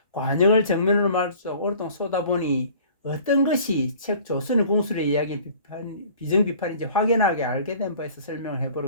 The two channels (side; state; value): both; inverted; correlation -0.49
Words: 관역을 정면으로 말해서 오랫동안 쏘다 보니 어떤 것이 책 조선의 공술의 이야기 비정비판인지 확연하게 알게 된 바에서 설명을